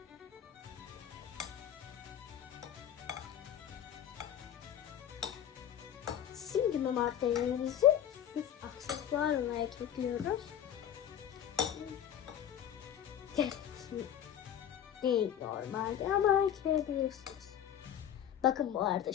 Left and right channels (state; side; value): quieter; right; 9.9 dB